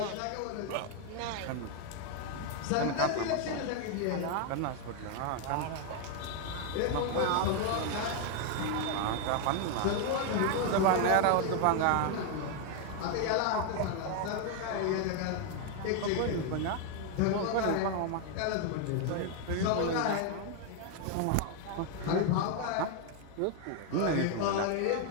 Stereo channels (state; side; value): different; both; correlation 0.01